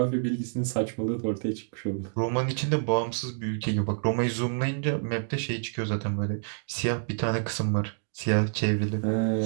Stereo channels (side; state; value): left; silent; digital silence